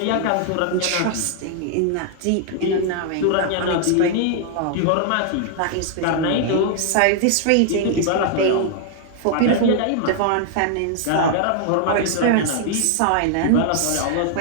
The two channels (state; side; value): different; both; correlation 0.00